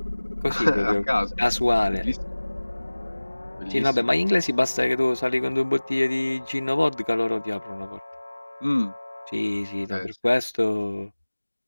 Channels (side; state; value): both; inverted; correlation -1.00